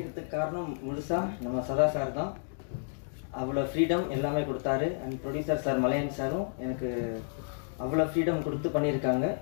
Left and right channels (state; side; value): silent; right; digital silence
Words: காரணம் முழுசா நம்ம சதா சார் தான். அவ்வளோ ஃப்ரீடம் எல்லாமே கொடுத்தாரு. அண்ட் ப்ரொடியூசர் சார் மலையன் சாரும் எனக்கு அவ்வளோ ஃப்ரீடம் கொடுத்து பண்ணியிருக்காங்க.